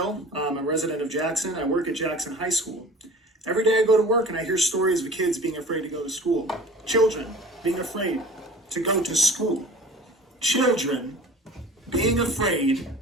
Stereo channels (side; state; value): both; normal; correlation 0.43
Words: I'm a resident of Jackson. I work at Jackson High School. Every day I go to work and I hear stories of kids being afraid to go to school. Children being afraid to go to school. Children being afraid